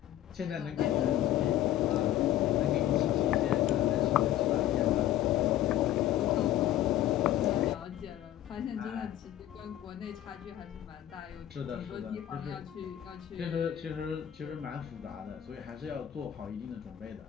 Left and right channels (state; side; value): quieter; right; 12.6 dB